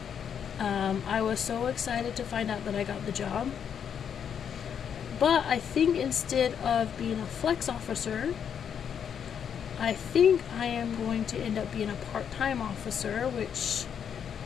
I was so excited to find out that I got the job. But I think instead of being a flex officer, I think I am going to end up being a part-time officer, which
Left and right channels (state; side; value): quieter; right; 8.0 dB